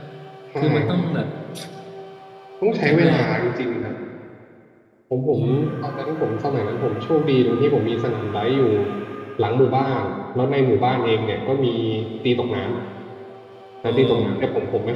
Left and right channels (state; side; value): identical; both; correlation 1.00